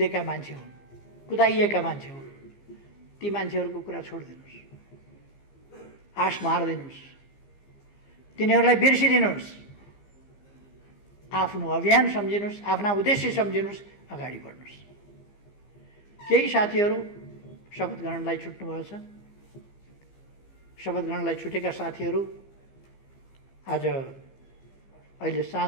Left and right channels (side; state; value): right; late; 15 ms